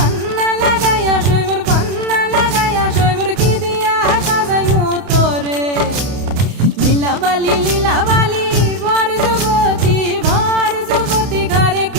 লাগাইয়া সই মোর পান্না লাগাইয়া সই মোর কি দিয়া সাজাই মোতরে লীলা বালি ভর যুবতী ঘরে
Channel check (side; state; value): left; late; 31 ms